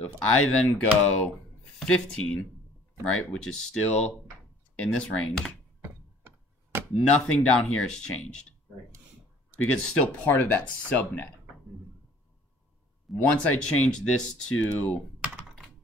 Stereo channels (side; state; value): both; normal; correlation 0.54